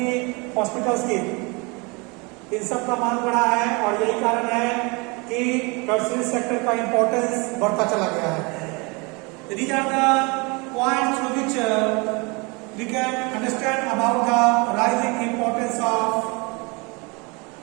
हॉस्पिटल्स की. इन सब का मांग बढ़ा है, और यही कारण है कि टर्सरी सेक्टर का इंपॉर्टेंस बढ़ता चला गया है. These are the points through which we can understand about the rising importance of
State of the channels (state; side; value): quieter; left; 28.7 dB